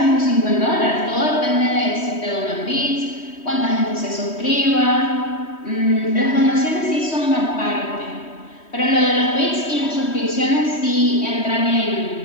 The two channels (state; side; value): late; right; 3.1 ms